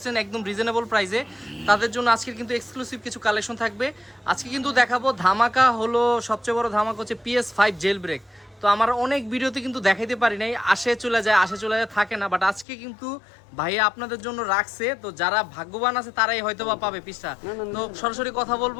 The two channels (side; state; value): right; drops out; at 12.7 s